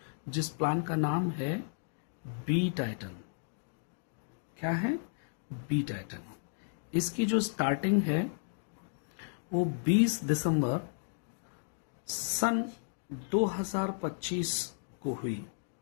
जिस प्लान का नाम है बी टाइटन। क्या है? B Titan. इसकी जो स्टार्टिंग है वो 20 दिसंबर सन 2025 को हुई।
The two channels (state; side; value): silent; right; digital silence